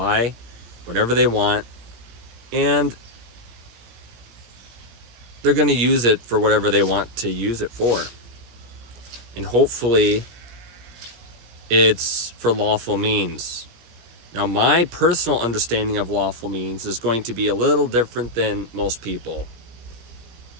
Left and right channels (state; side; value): late; left; 17 ms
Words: whatever they want, and they're going to use it for whatever they want to use it for. And hopefully, it's for lawful means. Now, my personal understanding of lawful means is going to be a little different than most people.